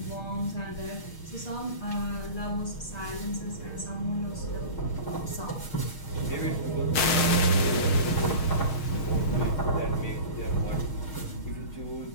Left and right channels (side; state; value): right; late; 6.5 ms